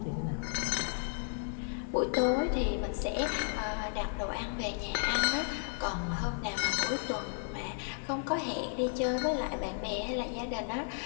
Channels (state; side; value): silent; right; digital silence